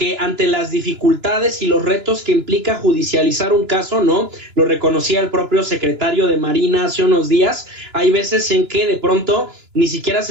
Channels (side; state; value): left; late; 2.9 ms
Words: ante las dificultades y los retos que implica judicializar un caso, ¿no? Lo reconocía el propio secretario de Marina hace unos días, hay veces en que de pronto ni siquiera